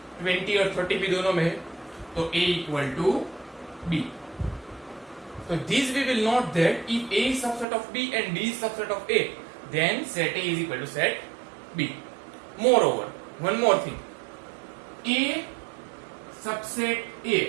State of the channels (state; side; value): drops out; left; at 7.7 s